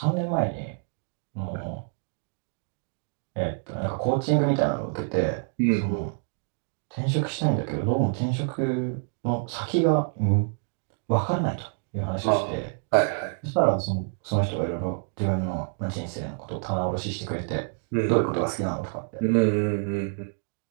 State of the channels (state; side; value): silent; left; 60 dB below the other